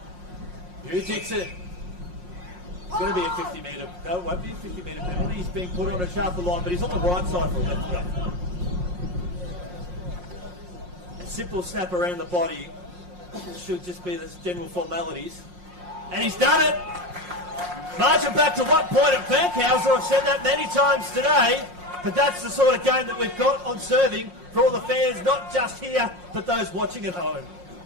Hugh Dixon. It's going to be a 50-metre. No, it won't be a 50-metre penalty. He's being put on a sharper line, but he's on the right side for a left go. A simple snap around the body. Should just be the general formalities. And he's done it! Marching back to what point at Fankhauser? I've said that many times today, but that's the sort of game that we've got on serving for all the fans, not just here, but those watching at home.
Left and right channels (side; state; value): left; late; 5.6 ms